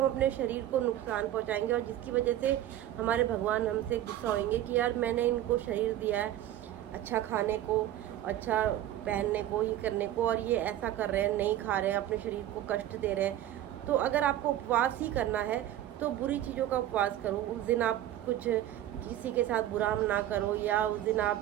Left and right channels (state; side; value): quieter; left; 12.7 dB